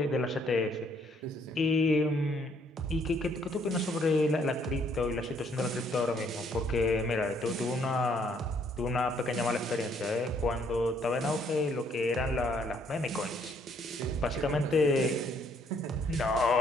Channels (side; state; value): both; normal; correlation 0.67